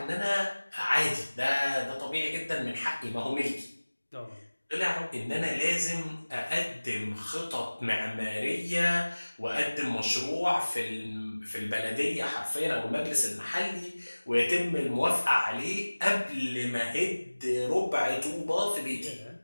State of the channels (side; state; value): both; inverted; correlation -1.00